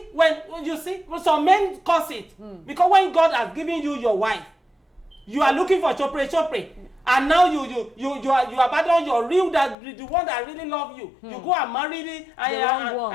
when you see, some men cause it. Because when God has given you your wife, you are looking for chopre. And now you abandon your real, the one that really love you. You go and marry it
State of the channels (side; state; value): right; drops out; at 9.8 s